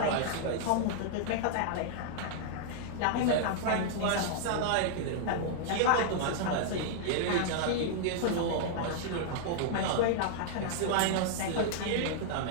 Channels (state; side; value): different; both; correlation -0.01